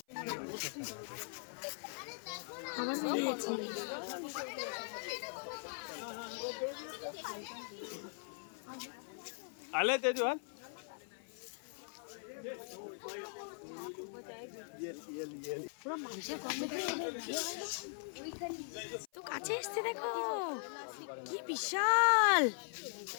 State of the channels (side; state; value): right; silent; 51 dB below the other